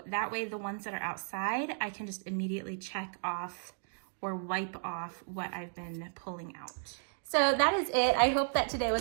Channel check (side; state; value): left; silent; digital silence